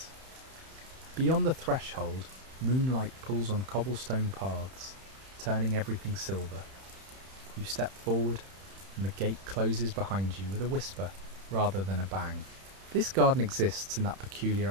Beyond the threshold, moonlight pulls on cobblestone paths, turning everything silver. You step forward, and the gate closes behind you with a whisper rather than a bang. This garden exists in that peculiar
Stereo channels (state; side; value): late; left; 31 ms